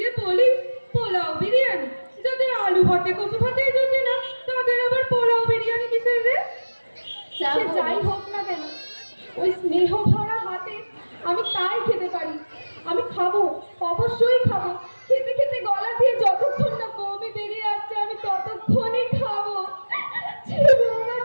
বলি, পোলাও বিরিয়ানি, যাদের আলু ভাতে কচু ভাতেই যদি না, তাদের আবার পোলাও বিরিয়ানি কিসের রে? সে যাই হোক না কেন, ওই স্নেহ ভরা হাতে আমি তাই খেতে পারি। আমি খাবো, অবশ্যই খাবো। খেতে খেতে গলা দিয়ে যতক্ষণ না বমি বেরিয়ে আসছে আমি ততক্ষণই খাবো।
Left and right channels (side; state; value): both; inverted; correlation -1.00